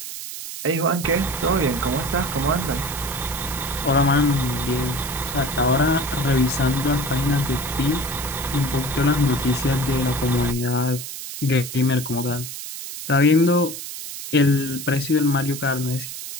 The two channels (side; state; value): right; noise; hiss, 9 dB below the sound